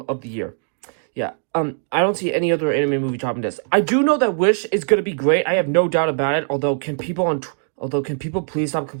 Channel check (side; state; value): left; silent; 65 dB below the other